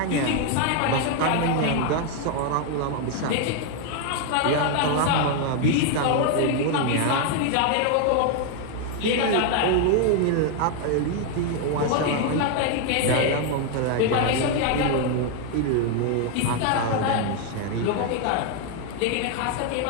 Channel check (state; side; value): different; both; correlation 0.01